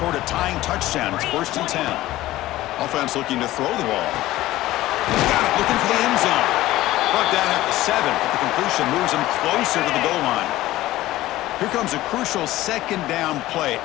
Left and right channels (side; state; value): right; quieter; 16.2 dB